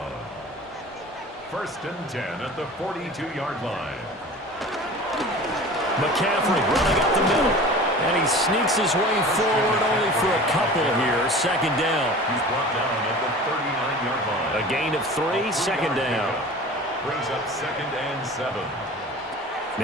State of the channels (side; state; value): both; normal; correlation 0.39